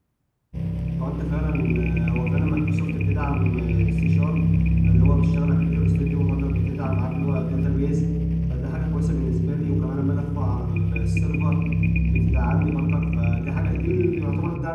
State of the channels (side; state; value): both; identical; correlation 1.00